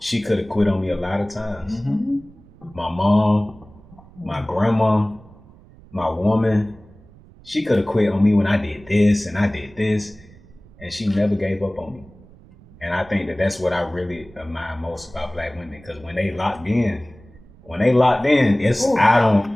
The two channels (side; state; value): right; noise; rumble, 24 dB below the sound